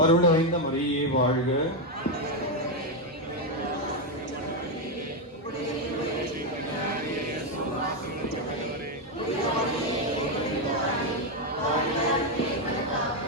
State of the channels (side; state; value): both; normal; correlation 0.05